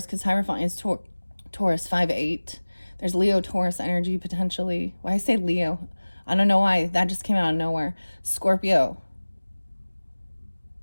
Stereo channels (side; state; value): both; inverted; correlation -1.00